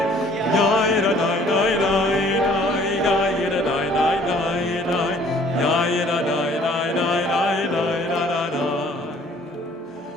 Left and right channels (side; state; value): both; normal; correlation 0.57